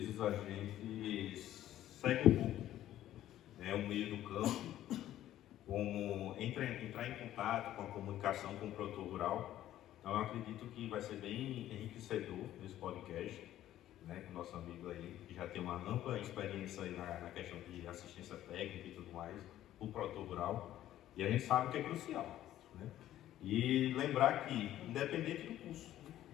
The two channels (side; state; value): right; quieter; 13.0 dB